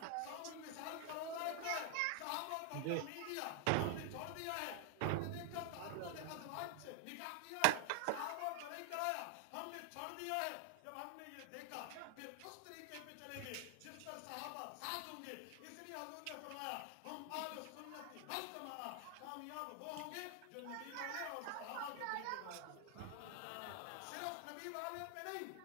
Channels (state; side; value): different; both; correlation 0.01